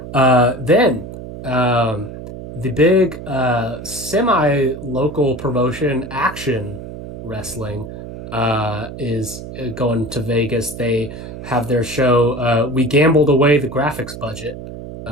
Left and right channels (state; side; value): noise; right; hum, 11 dB below the sound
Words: Then the big semi-local promotion, Action Wrestling, is going to Vegas. They have their show. We gambled away the graphics budget.